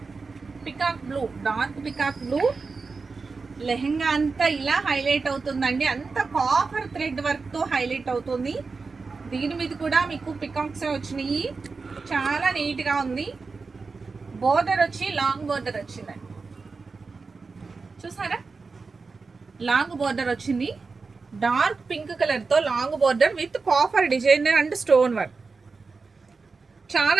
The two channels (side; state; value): left; quieter; 4.4 dB